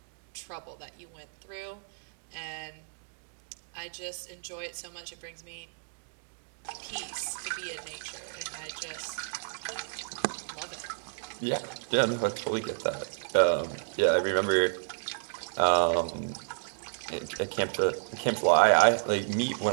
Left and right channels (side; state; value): left; silent; digital silence